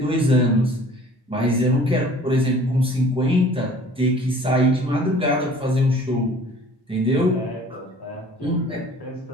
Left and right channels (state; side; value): normal; both; correlation 0.49